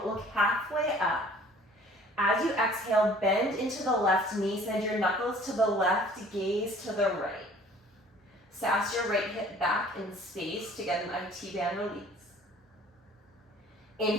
look halfway up. As you exhale, bend into the left knee, send your knuckles to the left, gaze to the right. Sass your right hip back in space to get an IT band release.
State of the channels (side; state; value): both; normal; correlation 0.52